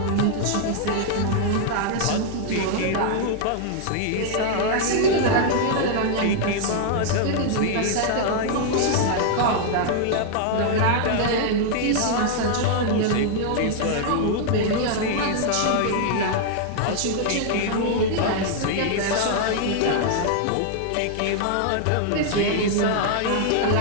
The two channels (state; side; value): different; both; correlation 0.00